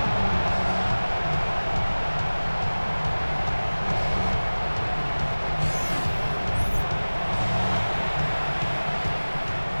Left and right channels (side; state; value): both; inverted; correlation -1.00